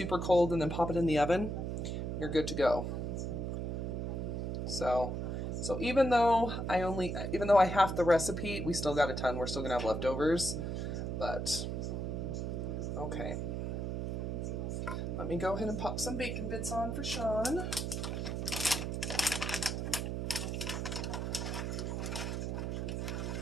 cold, and then pop it in the oven. You're good to go. So even though I halved the recipe, we still got a ton. We're still gonna have leftovers, but okay. Let me go ahead and pop some bacon bits on for Sean.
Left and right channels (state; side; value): noise; right; hum, 2 dB below the sound